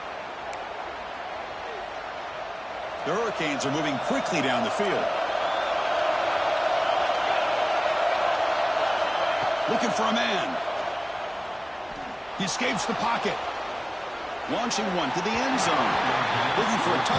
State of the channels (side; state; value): both; identical; correlation 1.00